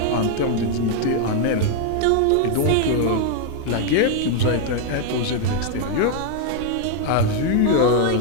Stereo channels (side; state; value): both; different; correlation 0.00